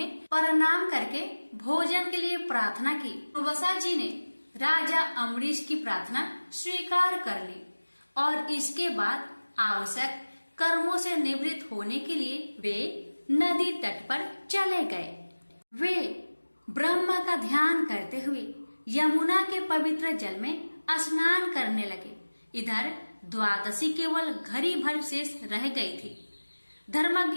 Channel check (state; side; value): inverted; both; correlation -1.00